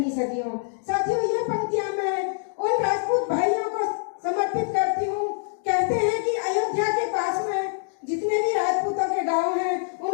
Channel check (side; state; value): right; silent; digital silence